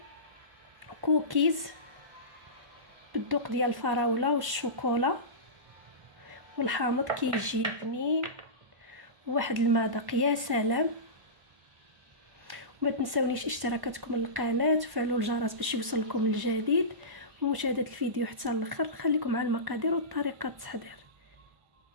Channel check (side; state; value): left; late; 1.1 ms